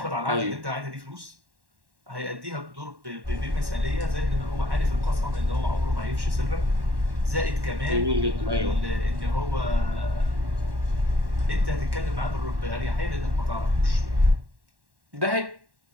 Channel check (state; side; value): late; left; 1.1 ms